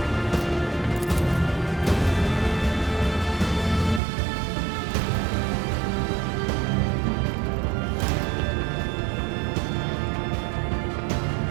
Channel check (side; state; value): left; drops out; at 4.0 s